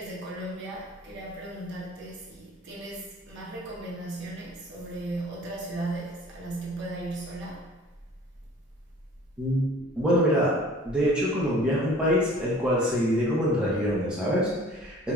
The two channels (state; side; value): normal; both; correlation 0.49